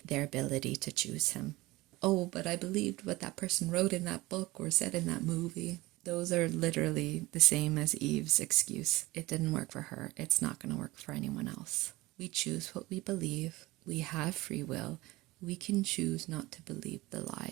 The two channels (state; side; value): quieter; left; 20.1 dB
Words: their ability to choose Him. Oh, but I believed what that person wrote in that book or said in that movie. Those are literally the same as Eve's excuse. It didn't work for her. It's not going to work for anyone else. We choose what we believe. We have free will. We can choose not to believe the